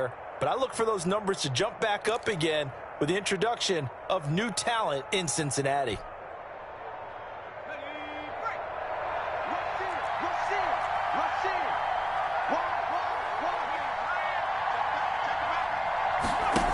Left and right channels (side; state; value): both; identical; correlation 1.00